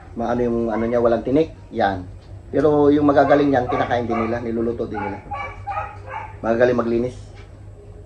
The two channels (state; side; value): identical; both; correlation 1.00